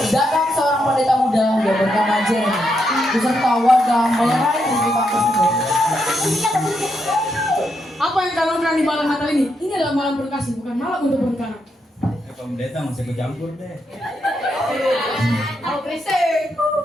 datang seorang pendeta muda yang bernama Jeremy beserta warga melerai keributan tersebut. Apa yang kalian lakukan di malam Natal ini? Ini adalah malam berkasih, bukan malam untuk berperkara. Pendeta masih ikut campur deh. Kalau berisik.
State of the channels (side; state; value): both; normal; correlation 0.81